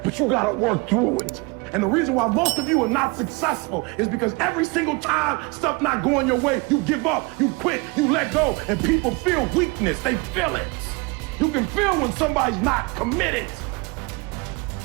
But you got to work through it. And the reason why most of you are not successful is because every single time stuff not going your way, you give up, you quit, you let go, and people feel weakness. They feel it. You can feel when somebody's not committed,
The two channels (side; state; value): left; quieter; 27.3 dB